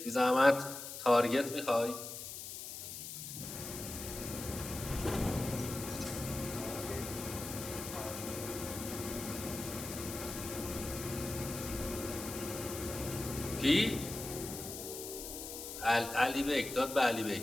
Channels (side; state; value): left; noise; hiss, 8 dB below the sound